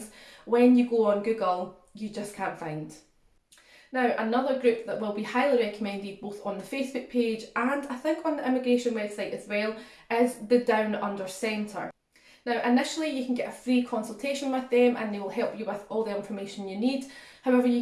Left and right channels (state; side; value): identical; both; correlation 1.00